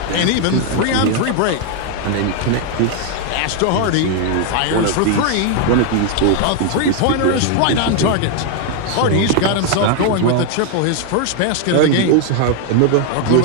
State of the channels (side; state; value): both; different; correlation 0.00